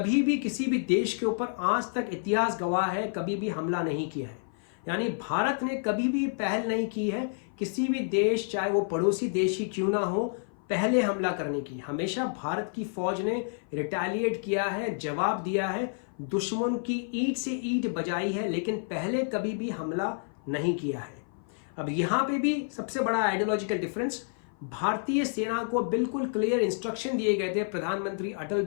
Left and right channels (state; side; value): silent; right; 56 dB below the other